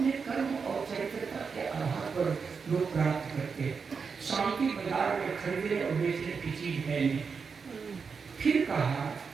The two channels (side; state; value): left; quieter; 5.5 dB